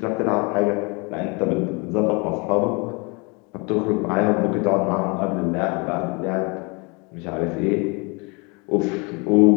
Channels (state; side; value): quieter; right; 30.3 dB